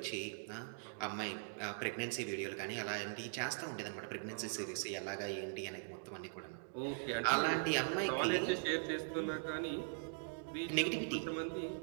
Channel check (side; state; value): left; silent; digital silence